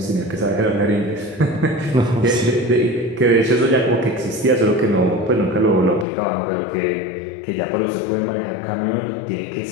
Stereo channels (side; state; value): right; drops out; at 6.1 s